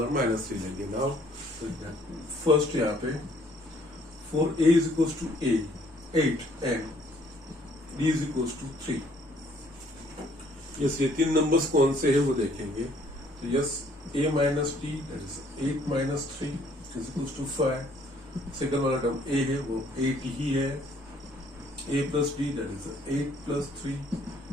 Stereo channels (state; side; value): normal; both; correlation 0.62